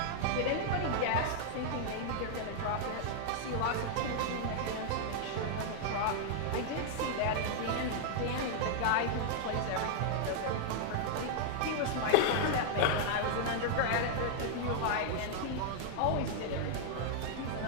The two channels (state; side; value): different; both; correlation 0.00